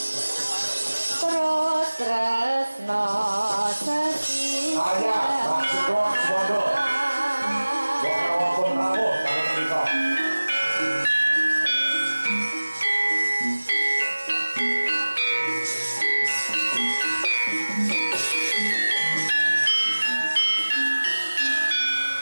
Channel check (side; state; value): both; inverted; correlation -1.00